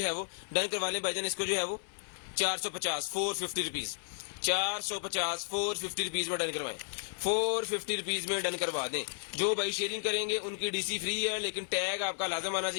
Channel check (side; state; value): right; silent; 56 dB below the other